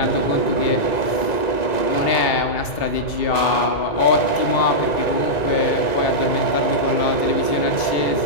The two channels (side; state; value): right; late; 1.9 ms